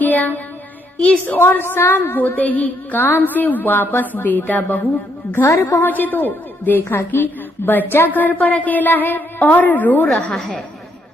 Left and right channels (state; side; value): normal; both; correlation 0.73